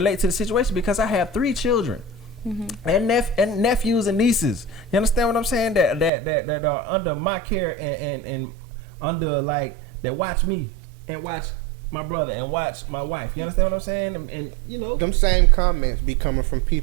to the situation because I have 3 children. And nephews and nieces. You understand what I'm saying? That are under my care and under like that watch me and watch my brother and watch my wife. You understand what I'm saying? And you know, them same comments be coming from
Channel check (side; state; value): left; drops out; at 6.1 s